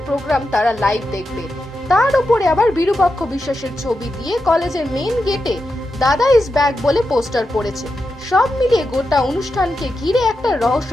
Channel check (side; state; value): both; normal; correlation 0.88